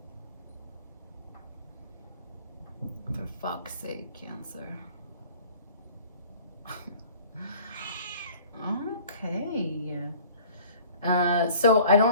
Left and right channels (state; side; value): inverted; both; correlation -0.49